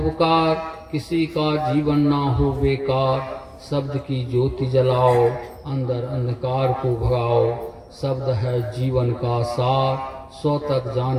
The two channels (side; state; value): both; identical; correlation 1.00